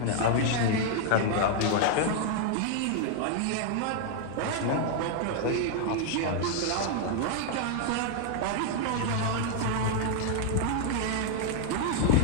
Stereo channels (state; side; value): different; both; correlation 0.00